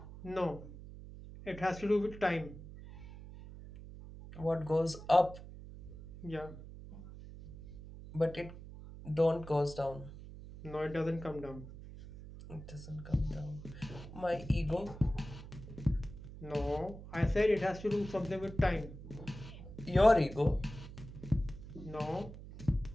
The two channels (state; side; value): noise; right; hum, 14 dB below the sound